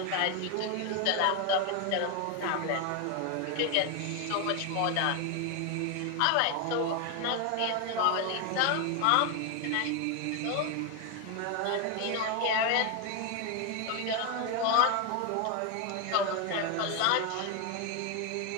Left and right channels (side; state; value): both; different; correlation 0.01